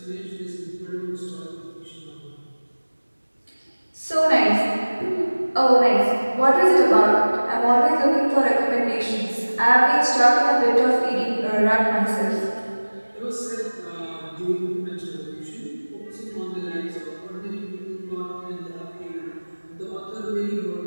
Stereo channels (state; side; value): inverted; both; correlation -1.00